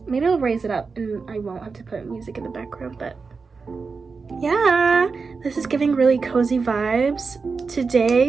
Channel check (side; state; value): left; quieter; 4.7 dB